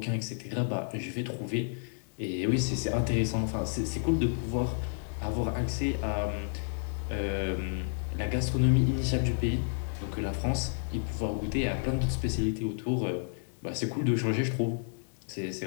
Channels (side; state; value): right; silent; digital silence